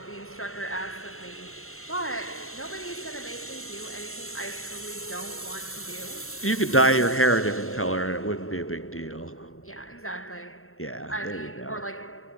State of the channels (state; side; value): late; right; 0.62 ms